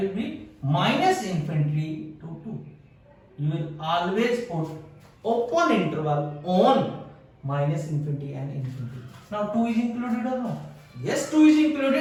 be minus infinity to 2. You will always put open interval on minus infinity and infinity. Now 2 is included or not? Yes, 2 is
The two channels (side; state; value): both; identical; correlation 1.00